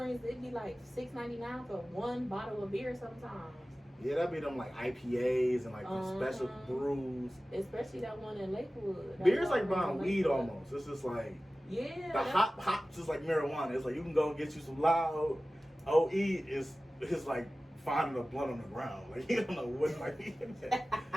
it'd be like $6.99 for one bottle of beer sometimes. yeah, that'd be them like IPAs and like the special Uh-huh. brews. Especially that one in Lakewood. That Beer's like Walgreens buying in weed Lakewood. almost. It's just like Yeah. the hops is like marijuana. It's like you can go and get you some loud. OE is like finding a blunt on the ground. Like you don't know what like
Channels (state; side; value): normal; both; correlation 0.96